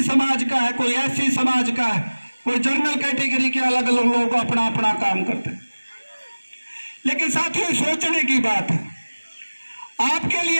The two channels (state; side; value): inverted; both; correlation -1.00